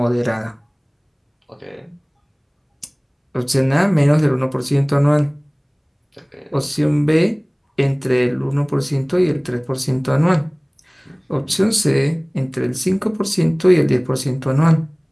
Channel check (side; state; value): both; identical; correlation 1.00